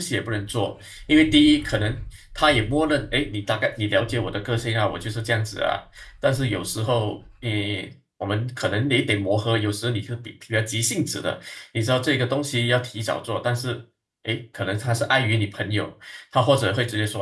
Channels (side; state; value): both; identical; correlation 1.00